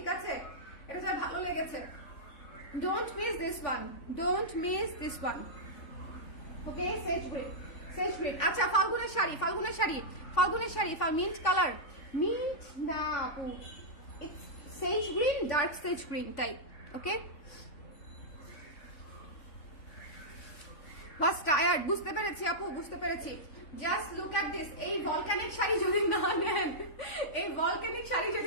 আছে। এটা যার ভালো লেগেছে, don't miss this one, don't miss this one, okay. Sage green, sage green. আচ্ছা, ফাল্গুনের শাড়ি, ফাল্গুনের শাড়ি, ফাল্গুনের শাড়ি, মিন্ট কালার, মিন্ট না আপু, it's sage green, dark sage green type, okay. বাস টায়ার্ড, বুঝতে পেরেছি আপু, বুঝতে পেরেছি। Just look at this. এই ভলক্যানিক শাড়ি যদি না নেন, এই ভলক্যানিক শাড়ি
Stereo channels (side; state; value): right; late; 3.5 ms